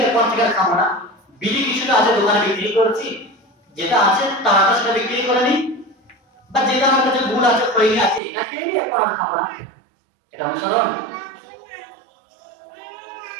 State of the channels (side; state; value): left; drops out; at 8.2 s